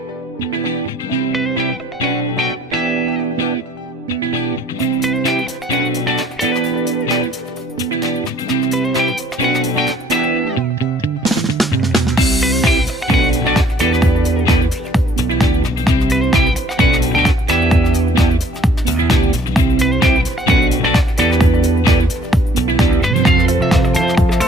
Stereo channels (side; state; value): both; normal; correlation 0.60